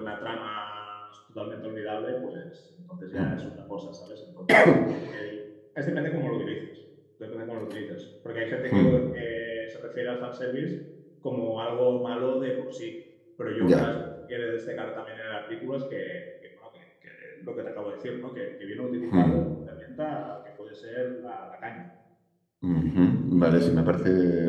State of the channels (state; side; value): identical; both; correlation 1.00